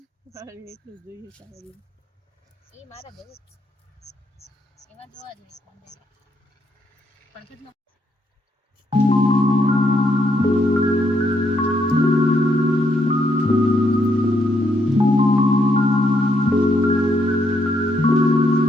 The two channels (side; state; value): both; normal; correlation 0.76